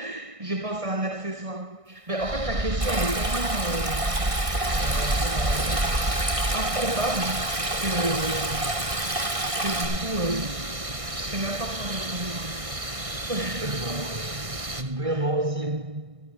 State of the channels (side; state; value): left; late; 1.6 ms